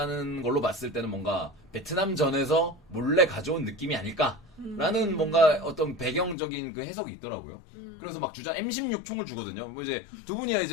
걸로 봤을 때는 뭔가 베트남전에서 몰래 가져온 느낌이 아닐까라는 뭔가 어떤 배경적인 그 해석이 있더라고요. 그래서 막 주장 M16 총을 주거든요. 뭐 이제 두 분이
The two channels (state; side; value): drops out; right; at 6.4 s